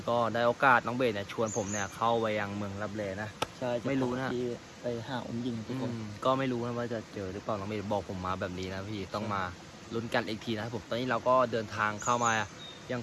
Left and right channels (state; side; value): identical; both; correlation 1.00